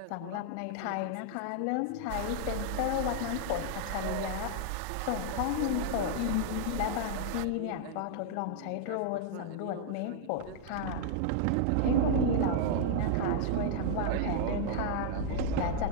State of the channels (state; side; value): different; both; correlation -0.01